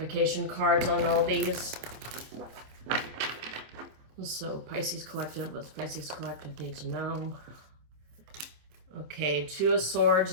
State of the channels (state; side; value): late; left; 26 ms